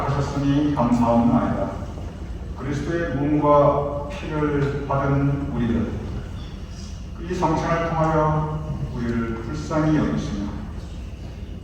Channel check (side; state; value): both; identical; correlation 1.00